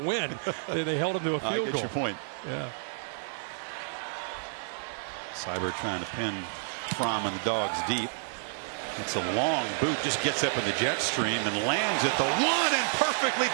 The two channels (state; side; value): silent; left; digital silence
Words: They held him to a field goal. I get your point. Yeah. Seibert trying to pin Fromm and the Dogs deep. It's a long boot, just gets up in the jet stream and lands at the 1 and perfectly